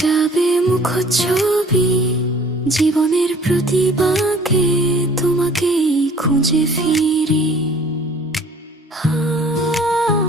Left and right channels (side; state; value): both; normal; correlation 0.51